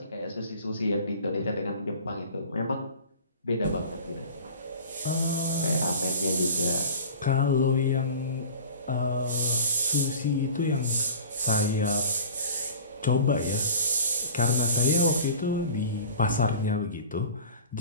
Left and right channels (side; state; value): both; inverted; correlation -0.40